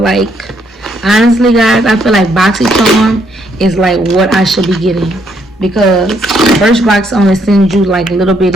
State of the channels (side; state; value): both; normal; correlation 0.72